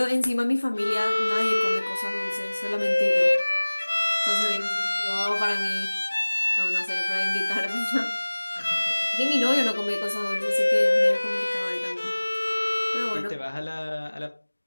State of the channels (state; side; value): inverted; both; correlation -1.00